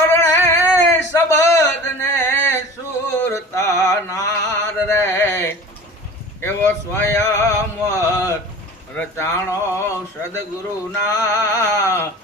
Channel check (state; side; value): normal; both; correlation 0.39